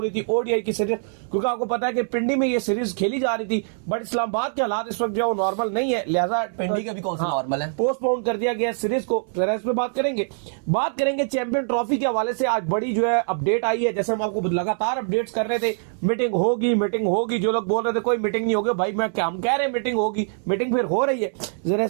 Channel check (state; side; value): silent; left; 63 dB below the other